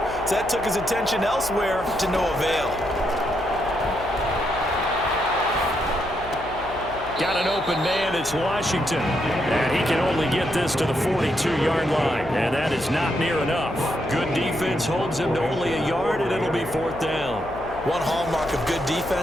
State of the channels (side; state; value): left; noise; hum, 15 dB below the sound